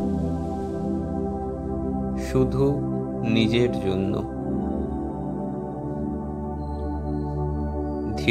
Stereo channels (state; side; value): identical; both; correlation 1.00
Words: শুধু নিজের জন্য।